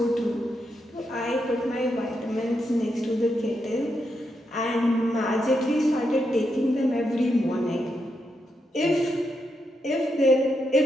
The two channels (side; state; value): both; normal; correlation 0.83